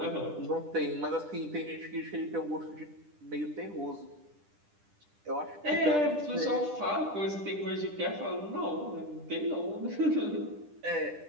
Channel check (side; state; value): left; late; 10 ms